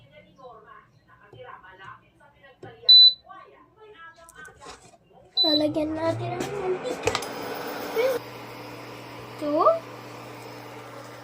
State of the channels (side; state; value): both; identical; correlation 1.00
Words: lalagyan natin ang mantika. 2